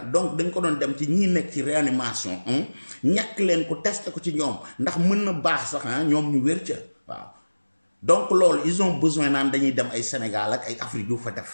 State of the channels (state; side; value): inverted; both; correlation -1.00